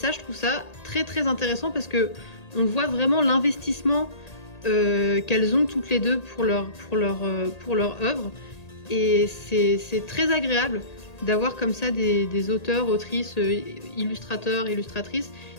je trouve ça très intéressant parce que on voit vraiment l'investissement qu'elles ont toutes les deux pour leur œuvre. Et c'est très agréable d'avoir comme ça des auteurs, autrices, illustrateurs, illustratrices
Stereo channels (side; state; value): right; late; 1.8 ms